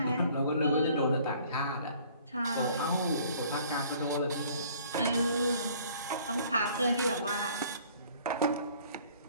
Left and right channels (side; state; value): both; inverted; correlation -0.56